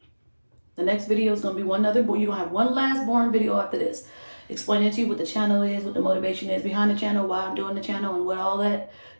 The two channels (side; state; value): both; inverted; correlation -1.00